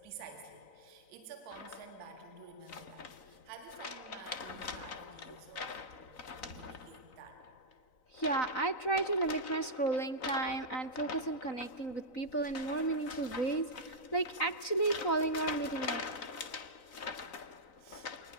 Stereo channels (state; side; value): late; right; 3.9 ms